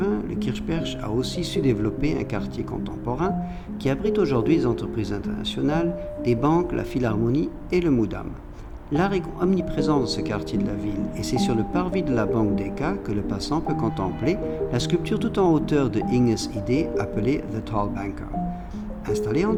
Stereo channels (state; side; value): identical; both; correlation 1.00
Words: le Kirchberg a aussi su développer un quartier contemporain qui abrite aujourd'hui des entreprises internationales, des banques, la Philharmonie et le Moudam. L'art est omniprésent dans ce quartier de la ville et c'est sur le parvis de la Banque Deca que le passant peut contempler la sculpture tout en hauteur de Inges Idee appelée The Tall Banker. Installée en